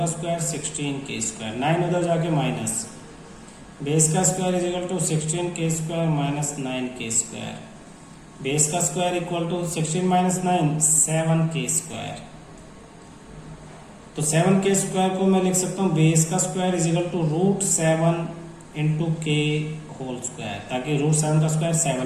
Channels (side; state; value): both; identical; correlation 1.00